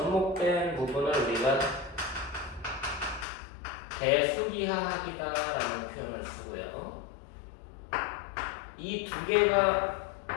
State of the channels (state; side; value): drops out; right; at 3.2 s